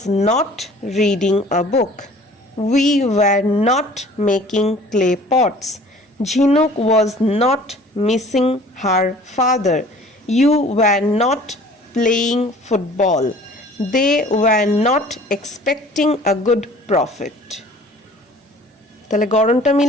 not reading a book. We were not making clay pots. Jhinuk was not missing her father. You were not playing football. They were not expecting a good profit. তাহলে গড়নটা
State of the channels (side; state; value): both; normal; correlation 0.49